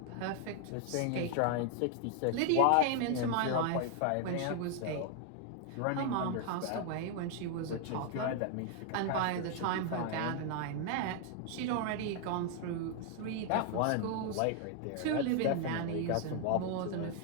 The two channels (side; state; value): both; different; correlation 0.00